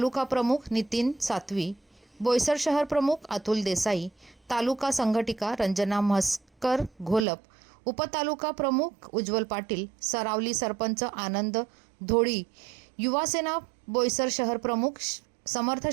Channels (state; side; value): drops out; left; at 7.2 s